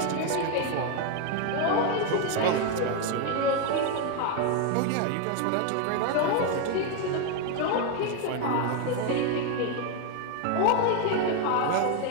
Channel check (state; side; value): different; both; correlation 0.01